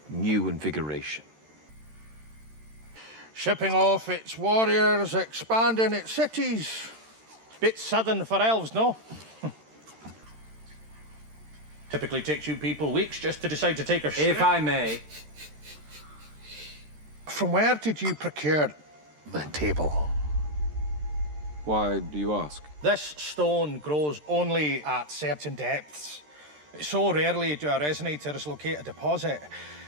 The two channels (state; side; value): late; left; 13 ms